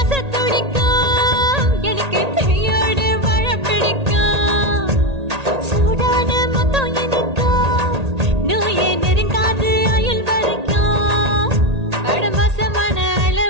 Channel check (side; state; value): left; late; 1.8 ms